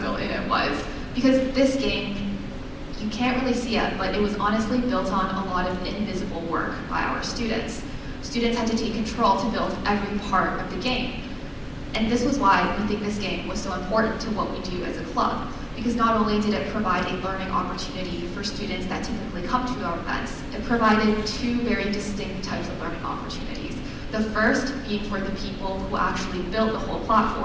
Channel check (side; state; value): both; identical; correlation 1.00